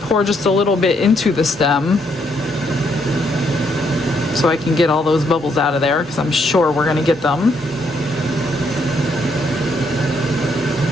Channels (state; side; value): normal; both; correlation 0.73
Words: pour just a little bit into the stem so I can get all those bubbles out of there, because I'm sure we're going to get them.